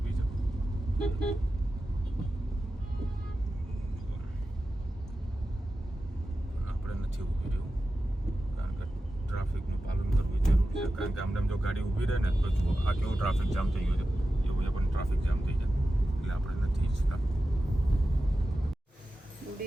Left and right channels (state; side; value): normal; both; correlation 0.93